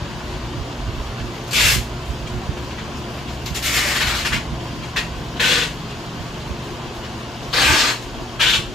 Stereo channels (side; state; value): both; normal; correlation 0.64